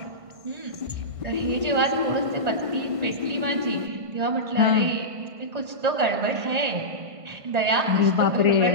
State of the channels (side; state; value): left; late; 1.5 ms